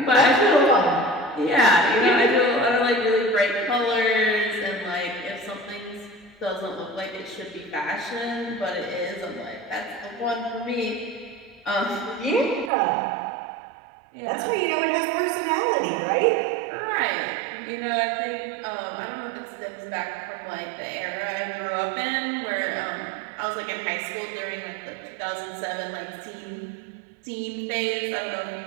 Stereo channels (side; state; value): left; drops out; at 12.7 s